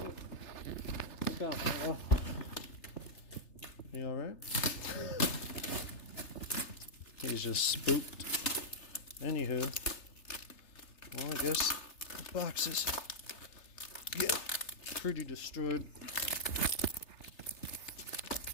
Look out, Milo. You alright? He's just spooked. Anywho, well, I guess the boxes get pretty destroyed.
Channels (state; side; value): late; right; 3.3 ms